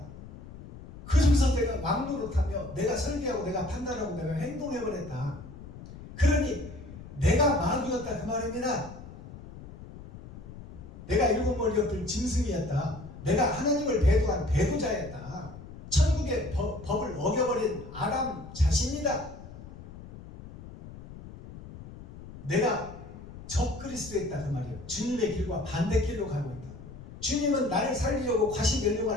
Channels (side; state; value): left; noise; rumble, 15 dB below the sound